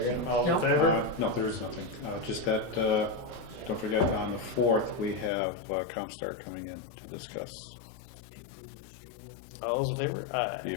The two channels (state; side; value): drops out; right; at 5.3 s